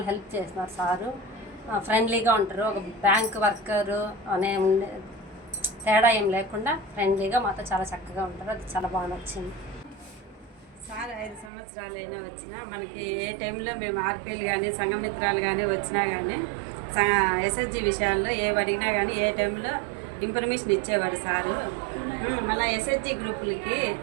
హెల్ప్ చేస్తున్నారు సారు. ఫ్రెండ్లీగా ఉంటారు. ఒక బ్యాంక్ వర్కరు అనే తేడా ఏం లేకుండా ఫ్రెండ్లీగా మాతో చాలా చక్కగా ఉంటారు. అది చాలా బాగా నచ్చింది. సార్ 5 సంవత్సరాలైనా వచ్చినా మనకి ఏ టైంలో మేము ఆర్పీలు కానీ సంఘమిత్రాలు కానీ వచ్చినా కానీ ఎస్ఎస్జి విషయాల్లో ఏవి అడిగినా కానీ ఏ టైంలో ఇన్ఫర్మేషన్ ఇచ్చేవాడు సారు. మళ్ళీ ఎస్ఎస్జి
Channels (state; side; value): drops out; left; at 11.5 s